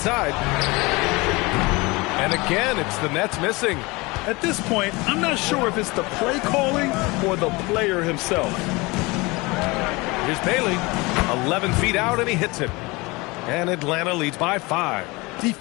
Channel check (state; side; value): quieter; right; 24.3 dB